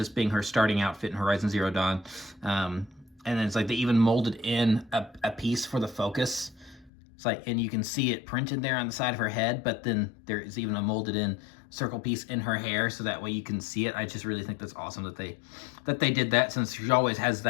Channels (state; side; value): drops out; right; at 6.9 s